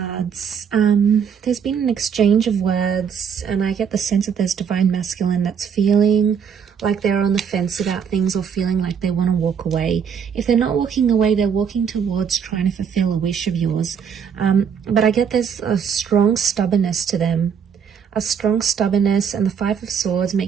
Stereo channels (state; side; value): quieter; left; 7.2 dB